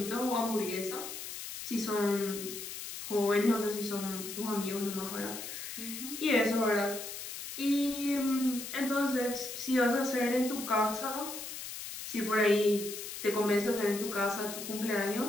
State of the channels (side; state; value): left; noise; hiss, 8 dB below the sound